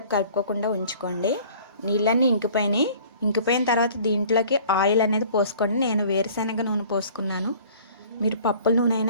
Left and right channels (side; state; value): both; inverted; correlation -0.50